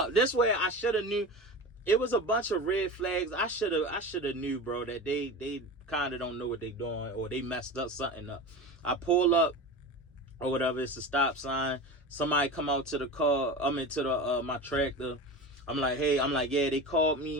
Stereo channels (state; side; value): normal; both; correlation 0.29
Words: This way, I should have knew. It was a bunch of red flags. I should have knew, bro, that they kind of don't know what they doing, or they messed up something up. I pull up or whatever. It's a stop sign. Somebody come out to the car. I'm into the my tractor. I'm like, hey, yeah, they called